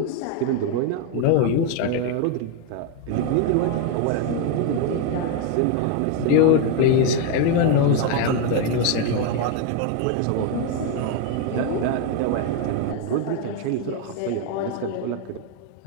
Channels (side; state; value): both; different; correlation 0.01